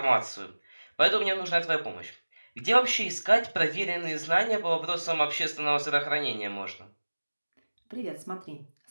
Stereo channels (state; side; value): inverted; both; correlation -1.00